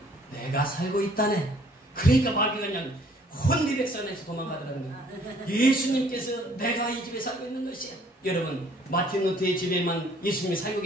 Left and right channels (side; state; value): both; normal; correlation 0.60